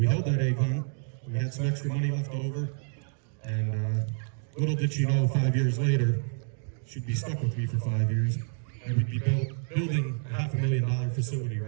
held that egg hunt. We had some extra money left over, and little did she know 5 years later, she'd be stuck with me for 5 years, and we'd be building a $500,000 facility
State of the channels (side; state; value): left; silent; 59 dB below the other